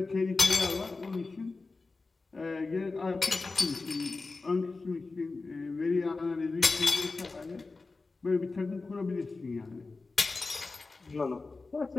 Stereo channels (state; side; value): quieter; right; 3.8 dB